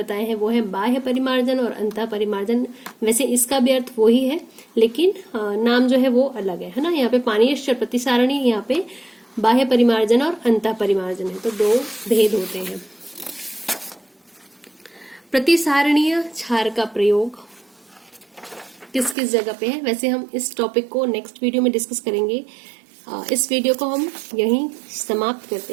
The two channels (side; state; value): left; drops out; at 19.2 s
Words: हैं वो है बाह्य परिमार्जन और अंतः परिमार्जन। वैसे इसका भी अर्थ वो ही है, लेकिन नाम जो है वो अलग है ना। यहाँ पे पानीयश्च और प्रतिसारणी, यहाँ पे बाह्य परिमार्जन और अंतः परिमार्जन है, तो 2 भेद होते हैं। प्रतिसारणीय क्षार का प्रयोग किस किस जगह पे है, वैसे हम इस टॉपिक को नेक्स्ट वीडियो में डिस्कस करेंगे। इस वीडियो को हम यहीं समाप्त करते